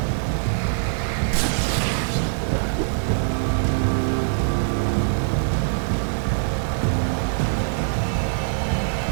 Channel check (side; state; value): left; silent; digital silence